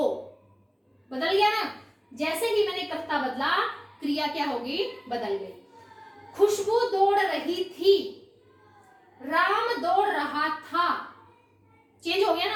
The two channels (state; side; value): identical; both; correlation 1.00